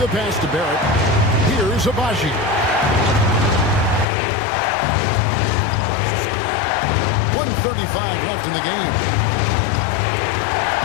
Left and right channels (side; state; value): right; drops out; at 4.0 s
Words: pass to Barrett. Here's Abaji. 2:35 left in the game.